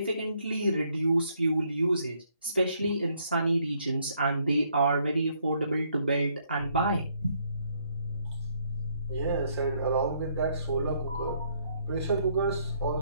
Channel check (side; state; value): both; inverted; correlation -0.70